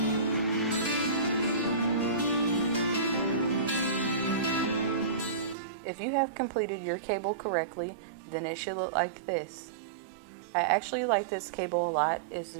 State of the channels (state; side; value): drops out; left; at 5.6 s